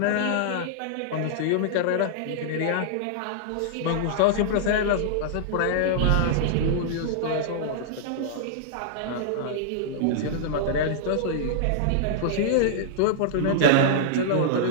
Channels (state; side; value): different; both; correlation -0.02